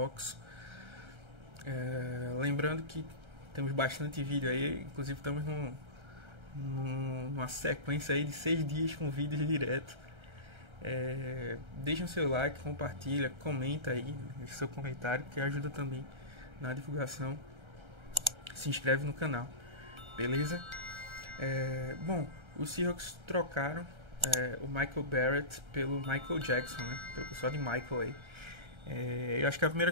Lembrando que temos bastante vídeo aí, inclusive estamos numa sequência aí de 6 dias com vídeos direto. Deixa o seu like, compartilha, comenta aí, deixa seu comentário que ajuda também na divulgação. Se inscreve no canal, beleza? Bom, os Seahawks trocaram o Michael Barrett pelo Michael Jackson, né? Pelo pessoal de Michael aí. Eu acho que a primeira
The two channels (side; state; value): left; late; 1.3 ms